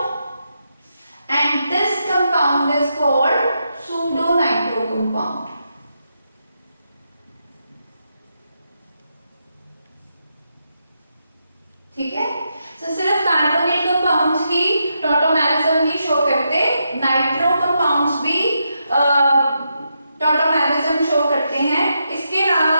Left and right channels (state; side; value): inverted; both; correlation -0.83